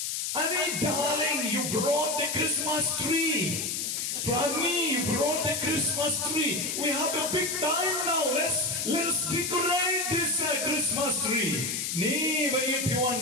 I mean, darling, you brought the Christmas tree. Prani, you brought the Christmas tree. We have a big time now. Let's decorate this Christmas tree. Ni bayi piwan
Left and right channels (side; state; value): left; noise; hiss, 2 dB below the sound